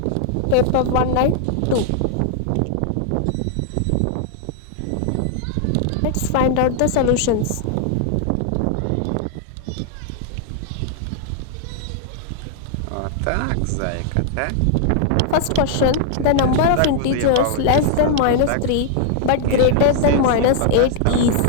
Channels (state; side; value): different; both; correlation 0.00